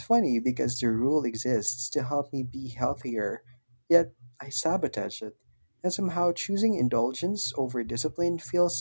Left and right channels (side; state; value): both; inverted; correlation -1.00